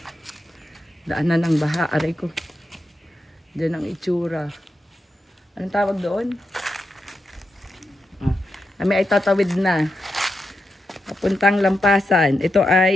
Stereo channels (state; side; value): normal; both; correlation 0.87